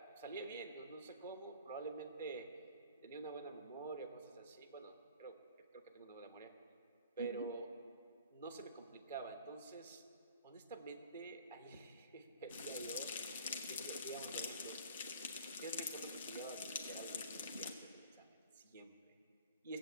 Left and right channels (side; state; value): both; inverted; correlation -0.47